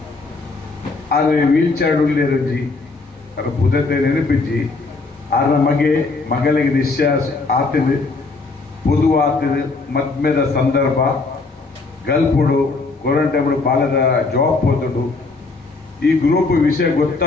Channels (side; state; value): right; quieter; 3.8 dB